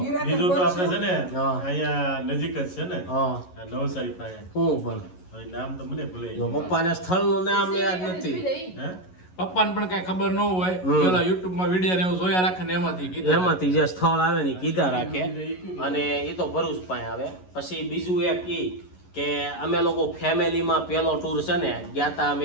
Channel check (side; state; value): right; late; 11 ms